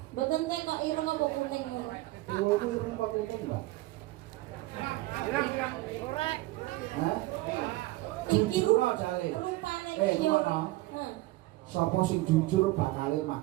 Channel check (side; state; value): left; quieter; 19.0 dB